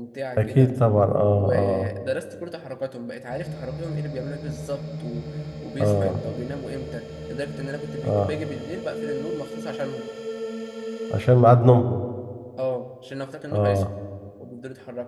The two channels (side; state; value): both; identical; correlation 1.00